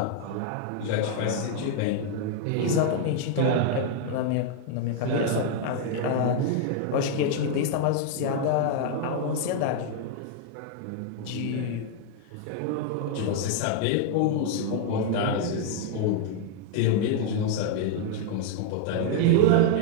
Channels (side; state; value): both; different; correlation 0.00